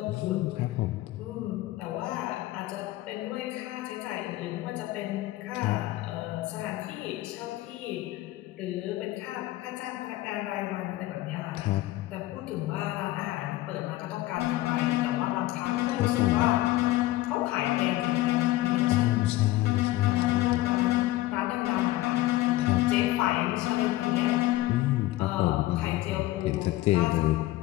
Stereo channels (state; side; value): quieter; right; 16.8 dB